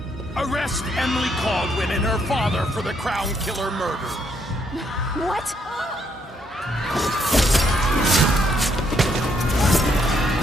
Arrest Emily Caldwin and her father for the Crown Killer murder. What?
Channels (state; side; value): normal; both; correlation 0.73